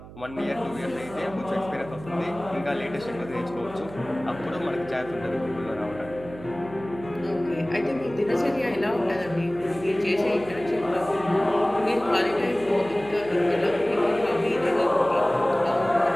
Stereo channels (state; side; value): noise; right; hum, 16 dB below the sound